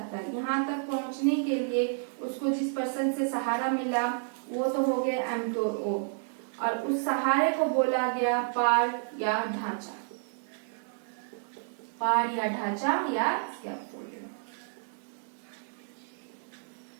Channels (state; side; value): silent; left; digital silence